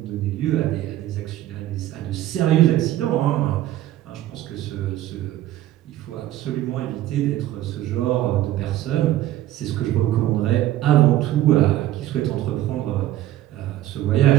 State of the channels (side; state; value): left; quieter; 14.0 dB